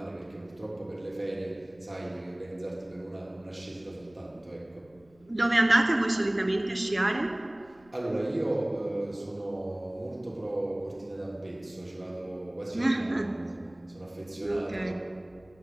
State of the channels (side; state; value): left; noise; rumble, 29 dB below the sound